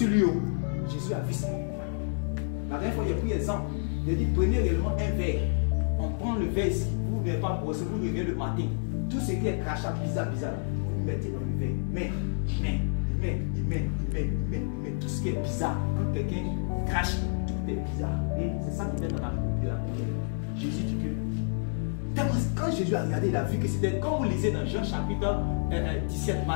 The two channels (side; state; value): right; silent; 59 dB below the other